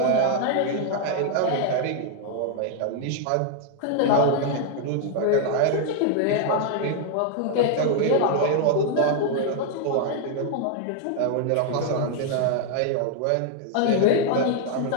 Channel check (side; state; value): both; different; correlation 0.00